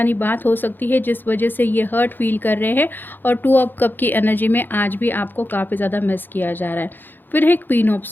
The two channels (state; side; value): late; right; 0.093 ms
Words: बात हो सकती है जिस वजह से ये हर्ट फील कर रहे हैं। और 2 ऑफ कप की एनर्जी में आज भी आपको काफ़ी ज़्यादा मिस किया जा रहा है। फिर है queen of